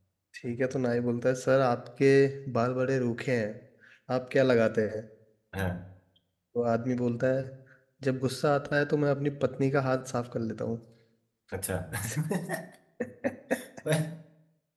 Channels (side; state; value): both; identical; correlation 1.00